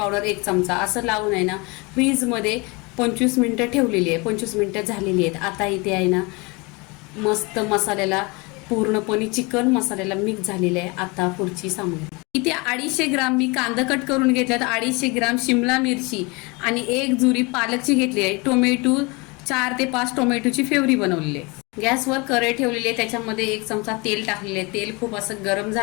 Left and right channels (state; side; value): quieter; right; 27.4 dB